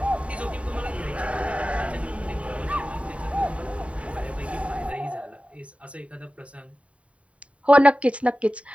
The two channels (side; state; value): left; late; 0.064 ms